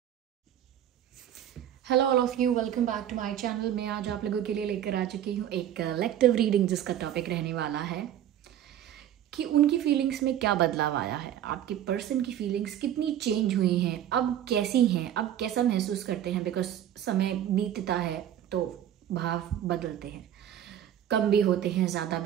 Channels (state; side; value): quieter; left; 10.8 dB